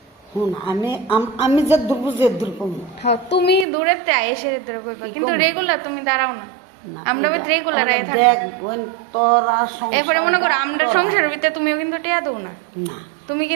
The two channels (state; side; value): drops out; left; at 3.7 s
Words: আমি যে দূর বুঝে দূর কমু হ্যাঁ তুমি দূরের তে এসে দূরে কইবা কিন্তু রেগুলার তুমি দাঁড়াও না আমরা বাড়ি রেগুলার আয় থাকো তোরা এরপরে মনে করো আমরা সংসারের ভিতরে তুমিও কিন্তু টিয়া দাও না না তুমি